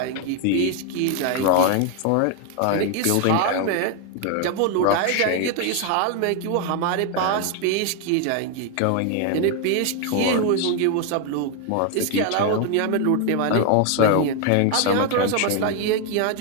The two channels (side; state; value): both; different; correlation 0.01